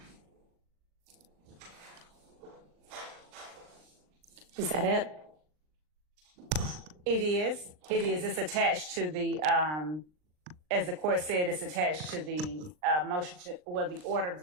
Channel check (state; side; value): late; left; 39 ms